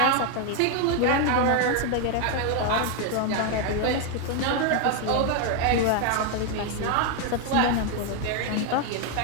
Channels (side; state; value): both; different; correlation 0.01